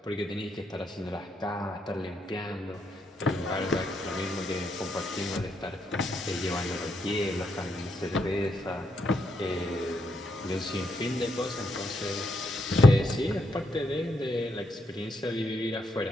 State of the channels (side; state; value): both; normal; correlation 0.78